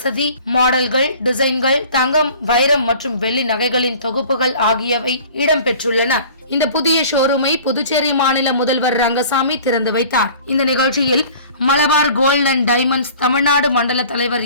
மாடல்கள், டிசைன்கள், தங்கம், வைரம் மற்றும் வெள்ளி நகைகளின் தொகுப்புகள் ஆகியவை இடம்பெற்றுள்ளன. இந்த புதிய ஷோரூமை புதுச்சேரி மாநில முதல்வர் ரங்கசாமி திறந்து வைத்தார். இந்த நிகழ்ச்சியில் Malabar gold and diamonds Tamil Nadu மண்டல தலைவர்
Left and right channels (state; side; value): inverted; both; correlation -0.46